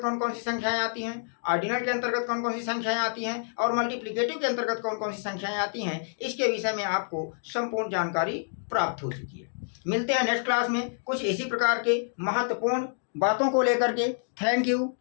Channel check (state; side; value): silent; right; digital silence